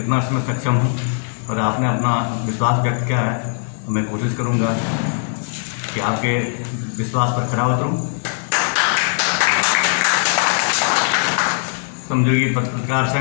इसमें सक्षम हूं, और आपने अपना विश्वास व्यक्त किया है, तो मैं कोशिश करूंगा कि आपके विश्वास पर खरा उतरूं। श्रमजीवी पत्रकार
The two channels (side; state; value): right; silent; 65 dB below the other